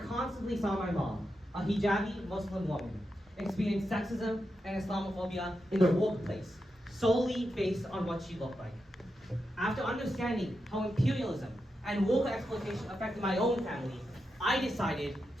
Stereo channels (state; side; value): normal; both; correlation 0.87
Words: saw my mom, a hijabi Muslim woman, experience sexism and Islamophobia in the workplace, solely based on what she looked like. After understanding how imperialism and worker exploitation affected my own family, I decided